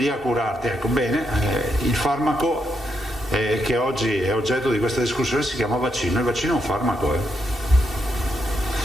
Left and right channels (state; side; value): normal; both; correlation 0.80